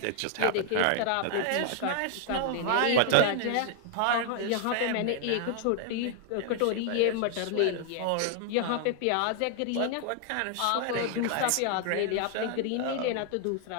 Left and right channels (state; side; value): different; both; correlation 0.00